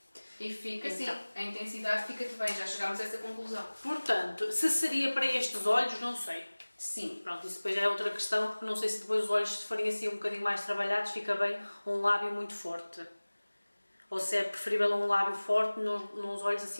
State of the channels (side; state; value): both; inverted; correlation -1.00